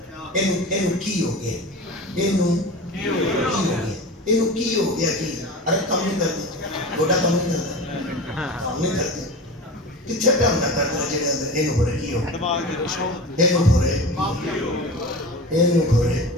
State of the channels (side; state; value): both; normal; correlation 0.31